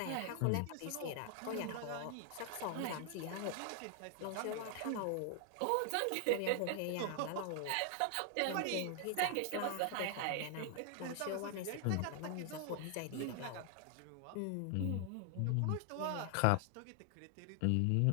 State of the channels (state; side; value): different; both; correlation 0.00